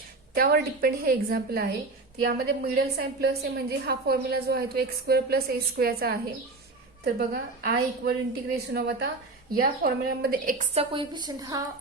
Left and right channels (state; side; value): quieter; left; 3.4 dB